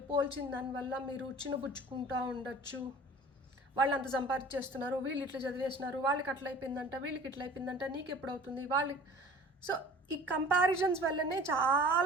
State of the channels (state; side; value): normal; both; correlation 0.45